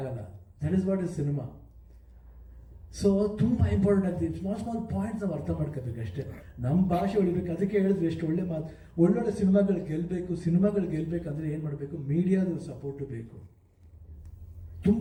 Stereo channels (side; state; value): both; identical; correlation 1.00